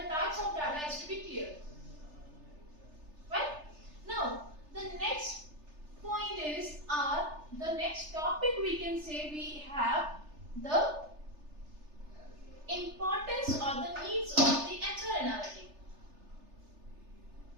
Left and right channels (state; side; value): late; left; 3.3 ms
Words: types of data is to be clear. Right? Now, the next point is, the next topic we can say we have the importance or the needs of the HR analytic.